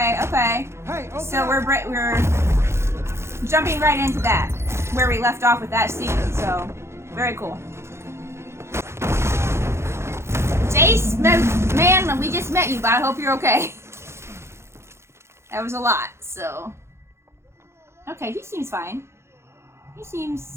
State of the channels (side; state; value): left; late; 0.13 ms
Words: Hey, okay. So we're jumping right into that, where we left off with that scene. So, very cool. Jayce, man, we just met you, but I hope you're okay. That was a lot, so. Okay, he seems fine. He